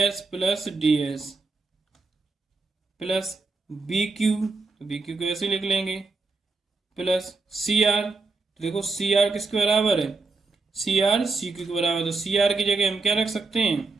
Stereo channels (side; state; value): left; quieter; 3.9 dB